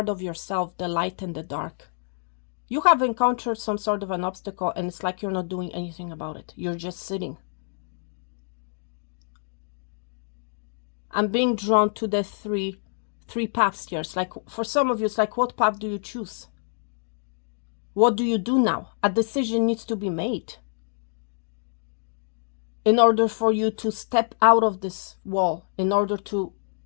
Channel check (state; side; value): silent; right; 61 dB below the other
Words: of yourself, the light and the dark. You have encountered some sort of an obstacle and it's like you're not doing anything about it. You're just sitting. I'm being drawn to the three paths here. It's like, for some of you, it's like, what path do you choose? What do you do now? A decision needs to be made in order for you to step out of this wall, in order to